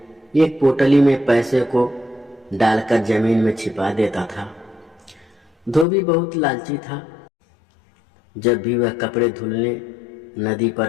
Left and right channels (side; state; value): right; drops out; at 5.9 s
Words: एक पोटली में पैसे को डालकर जमीन में छिपा देता था। धोबी बहुत लालची था। जब भी वह कपड़े धुलने नदी